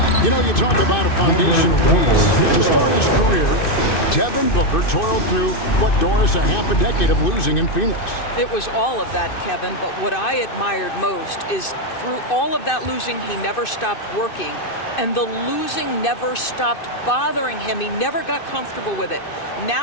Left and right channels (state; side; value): late; right; 2.6 ms